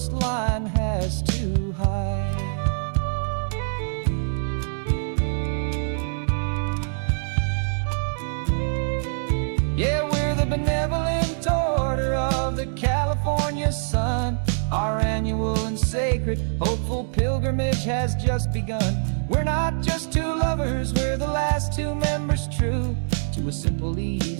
has to hide. spirit. Hopeful pilgrimage has just begun. We're not just two lovers, we're the last two members true to a simple,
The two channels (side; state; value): left; silent; digital silence